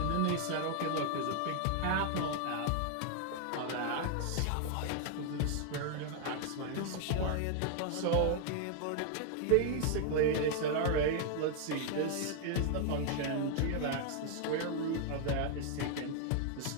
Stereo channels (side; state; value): both; different; correlation 0.00